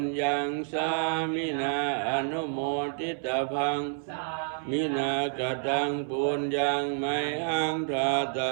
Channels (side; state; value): left; silent; 59 dB below the other